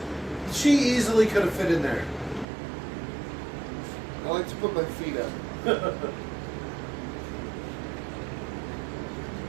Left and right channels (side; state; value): left; drops out; at 2.5 s